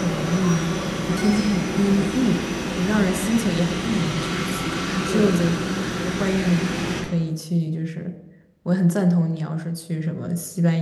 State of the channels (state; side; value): identical; both; correlation 1.00